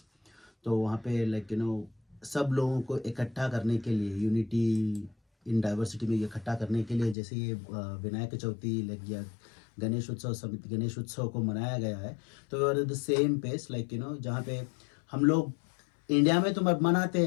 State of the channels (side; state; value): right; drops out; at 7.2 s